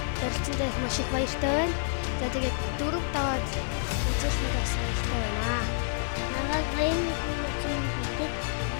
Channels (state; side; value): silent; right; digital silence